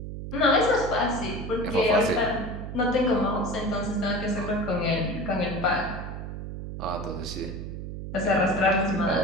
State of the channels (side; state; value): right; noise; hum, 8 dB below the sound